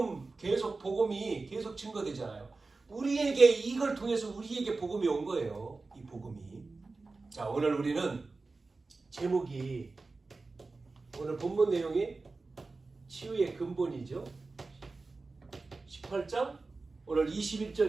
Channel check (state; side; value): quieter; left; 3.7 dB